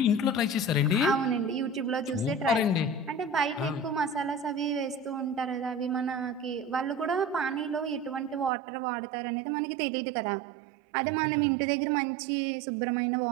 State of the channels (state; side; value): drops out; left; at 8.5 s